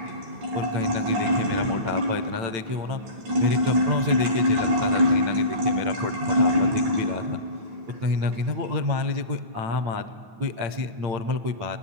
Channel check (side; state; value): left; late; 9.2 ms